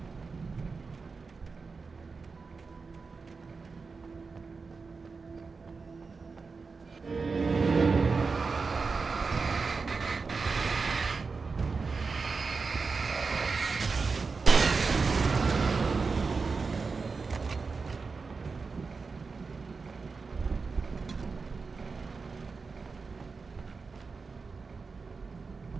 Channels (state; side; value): quieter; left; 4.6 dB